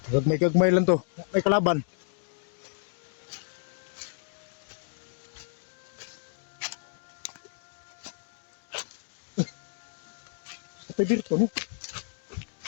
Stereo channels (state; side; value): silent; right; digital silence